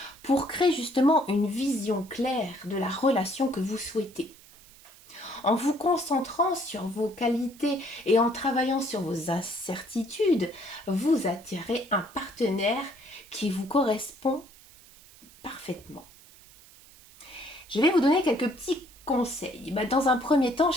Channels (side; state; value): right; noise; hiss, 23 dB below the sound